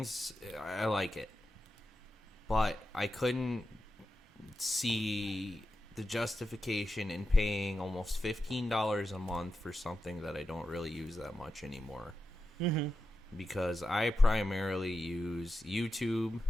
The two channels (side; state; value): both; normal; correlation 0.90